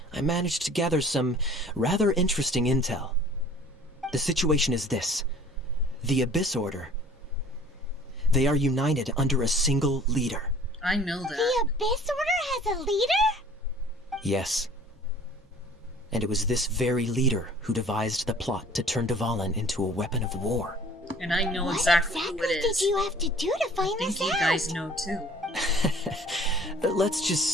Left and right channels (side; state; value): both; normal; correlation 0.50